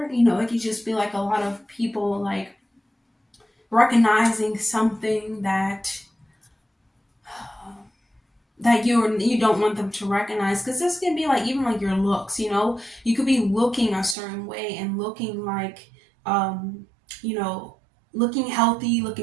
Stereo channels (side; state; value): left; drops out; at 14.2 s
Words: It could just be like a lot of people like recognizing something that you don't want them to recognize, because this can be like even like your looks. You could be looking a certain way and looking like looking healthy,